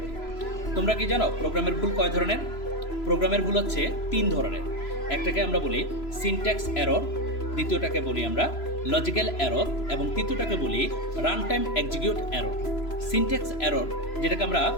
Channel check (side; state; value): right; late; 3.0 ms